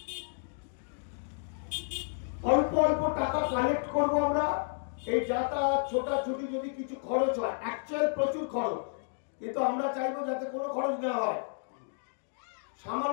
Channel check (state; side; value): silent; right; digital silence